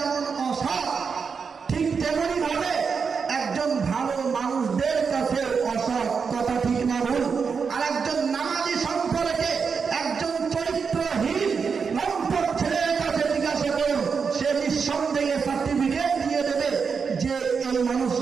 অসৎ, ঠিক তেমনি ভাবে একজন ভালো মানুষদের কাছে অসৎ। কথা ঠিক না ভুল? আর একজন নামাজি সম্পর্কে একজন চরিত্রহীন লম্পট ছেলের কাছে জিজ্ঞাসা করুন, সে নিঃসন্দেহে সার্টিফিকেট দিয়ে দেবে যে এই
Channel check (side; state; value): left; quieter; 5.7 dB